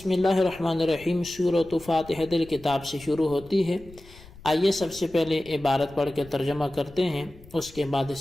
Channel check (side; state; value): left; noise; rumble, 21 dB below the sound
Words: اللہ الرحمن الرحیم سورۃ فاتحۃ الکتاب سے شروع ہوتی ہے۔ آئیے سب سے پہلے عبارت پڑھ کے ترجمہ کرتے ہیں، اس کے بعد